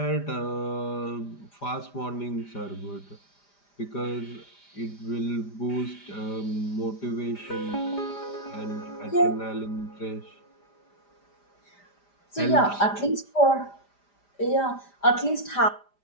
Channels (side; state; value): right; late; 5.0 ms